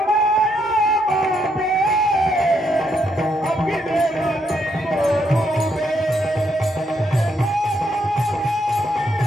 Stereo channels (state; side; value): normal; both; correlation 0.76